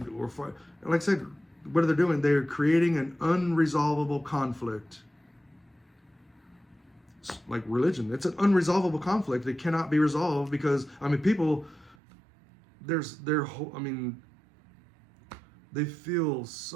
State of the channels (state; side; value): drops out; left; at 12.0 s